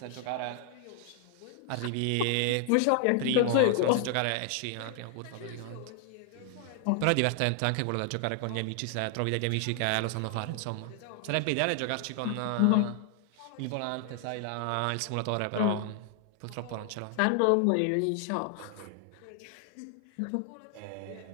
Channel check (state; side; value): different; both; correlation 0.00